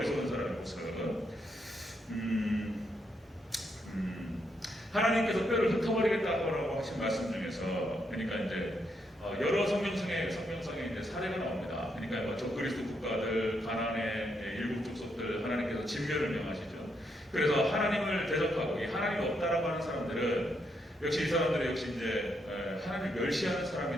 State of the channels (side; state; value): both; normal; correlation 0.78